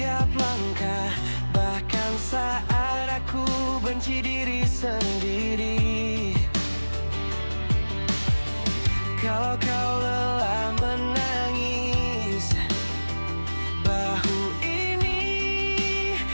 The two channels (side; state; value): both; inverted; correlation -1.00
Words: langkah, bahkan saat aku benci diri sendiri. Kalau kau lelah menangis, bahu ini